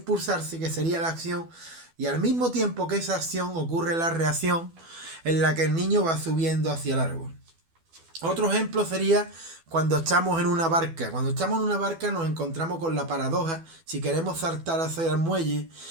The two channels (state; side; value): late; left; 12 ms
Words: que sería la acción, y al mismo tiempo que esa acción ocurre la reacción en la que el niño va subiendo hacia el árbol. Otro ejemplo sería cuando estamos en una barca. Cuando estamos en una barca nos encontramos con la paradoja, si queremos saltar hacia el muelle,